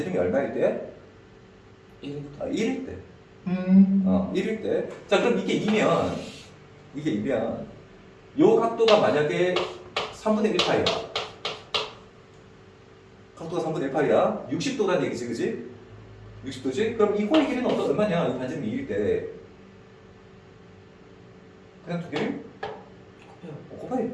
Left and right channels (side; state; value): both; identical; correlation 1.00